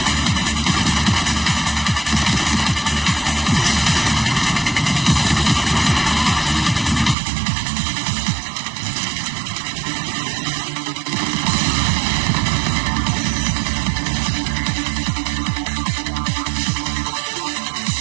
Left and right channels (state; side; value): drops out; left; at 7.2 s